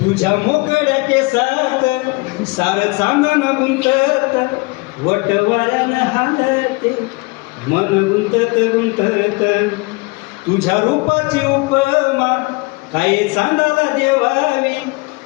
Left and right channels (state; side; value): quieter; right; 26.9 dB